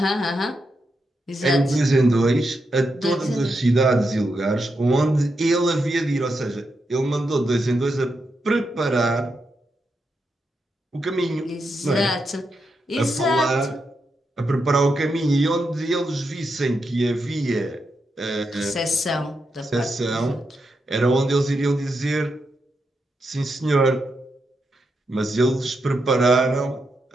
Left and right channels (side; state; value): both; normal; correlation 0.84